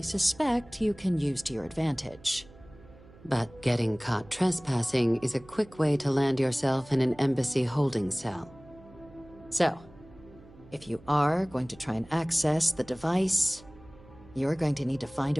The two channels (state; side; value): noise; right; hum, 23 dB below the sound